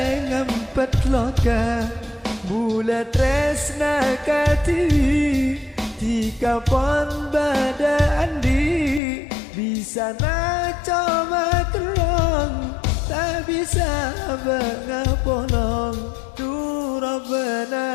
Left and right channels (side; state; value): right; drops out; at 9.0 s